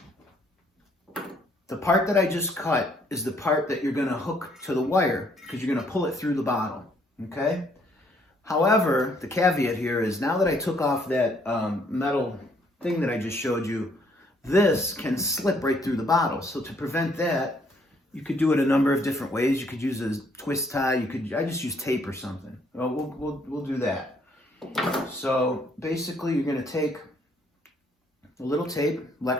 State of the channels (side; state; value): both; normal; correlation 0.66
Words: the part that I just cut is the part that you're going to hook to the wire, because you're going to pull it through the bottle, okay? However, the caveat here is, now that I took off that metal thing that I just showed you, this can slip right through the bottle. So to prevent that, you could do it a number of different ways. You could use a twist tie. I just use tape or something. Well, we'll do that. So basically, you're going to take a little tape.